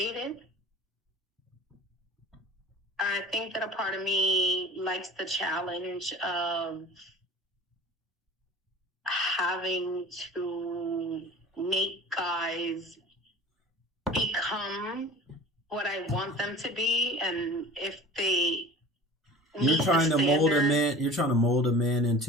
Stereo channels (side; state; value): both; normal; correlation 0.41